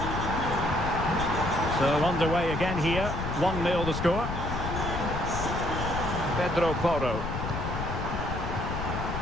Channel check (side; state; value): left; noise; rumble, 4 dB below the sound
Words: So underway again here. 1-0 the score. Pedro Porro.